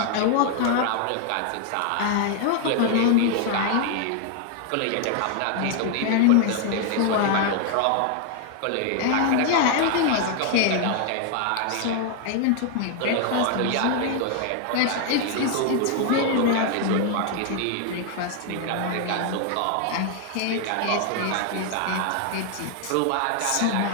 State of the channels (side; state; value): both; different; correlation 0.00